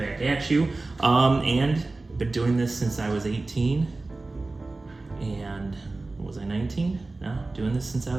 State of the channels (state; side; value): quieter; left; 3.3 dB